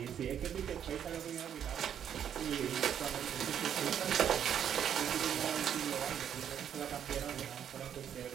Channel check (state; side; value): quieter; left; 9.1 dB